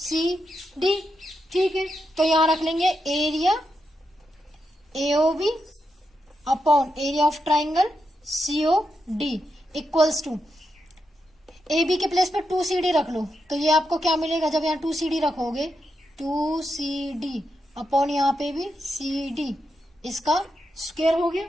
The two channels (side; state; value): both; normal; correlation 0.85